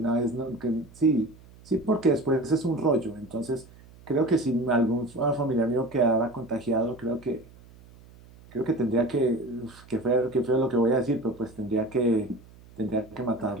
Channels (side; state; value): right; noise; hum, 23 dB below the sound